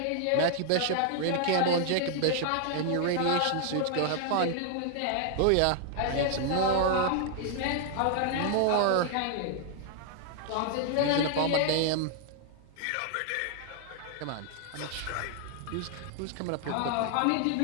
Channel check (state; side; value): different; both; correlation 0.00